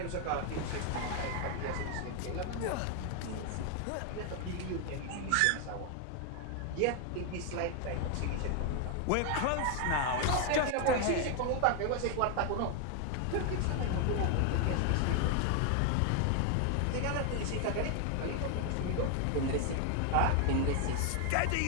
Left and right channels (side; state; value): both; different; correlation 0.00